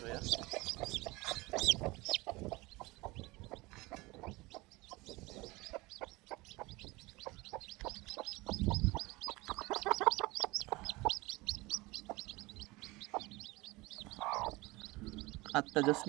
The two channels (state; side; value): quieter; left; 22.4 dB